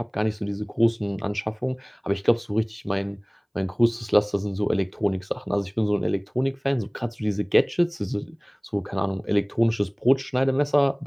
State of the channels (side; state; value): both; identical; correlation 1.00